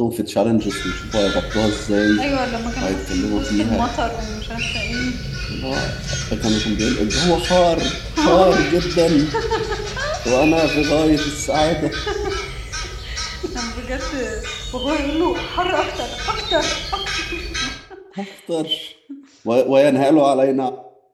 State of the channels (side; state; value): both; identical; correlation 1.00